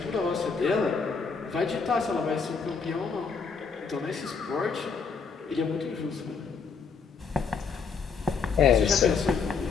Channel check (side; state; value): right; quieter; 5.4 dB